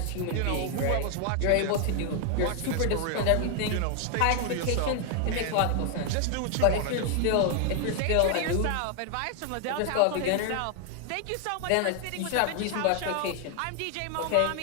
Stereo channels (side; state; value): both; different; correlation 0.00